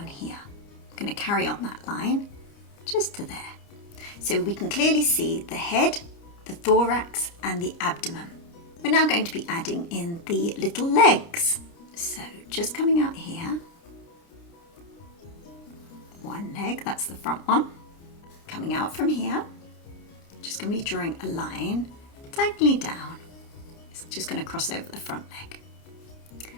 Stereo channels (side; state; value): right; late; 29 ms